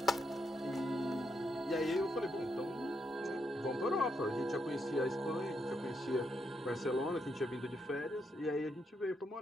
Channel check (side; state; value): both; normal; correlation 0.80